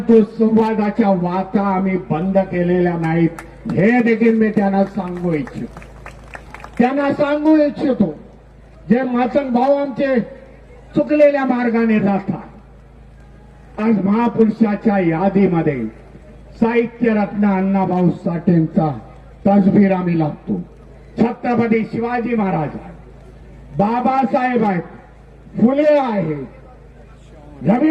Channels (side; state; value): both; identical; correlation 1.00